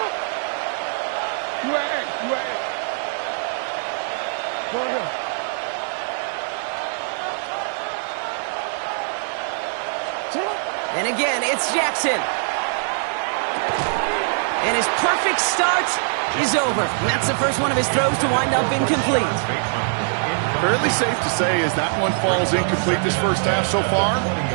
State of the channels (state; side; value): silent; left; 55 dB below the other